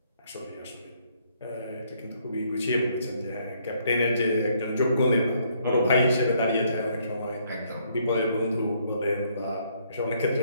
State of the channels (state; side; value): inverted; both; correlation -0.69